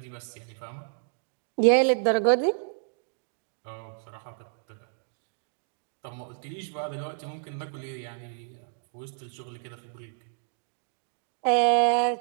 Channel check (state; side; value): silent; left; digital silence